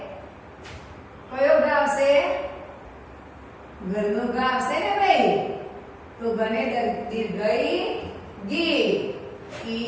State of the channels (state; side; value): identical; both; correlation 1.00